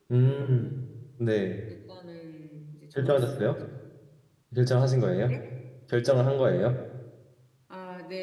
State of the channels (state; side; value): identical; both; correlation 1.00